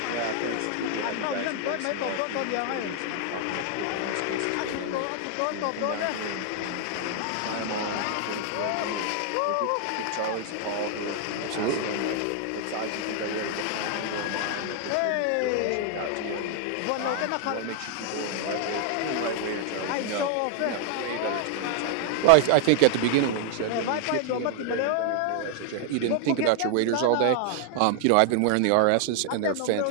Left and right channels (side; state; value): both; different; correlation 0.00